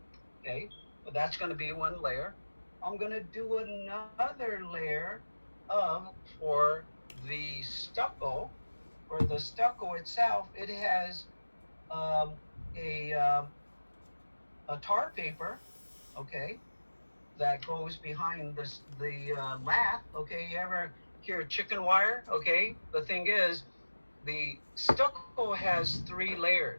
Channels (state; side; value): inverted; both; correlation -1.00